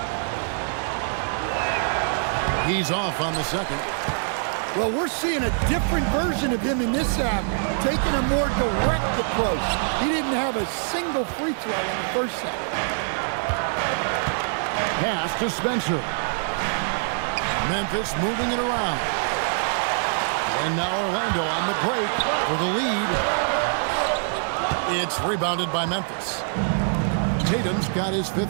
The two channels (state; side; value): silent; left; digital silence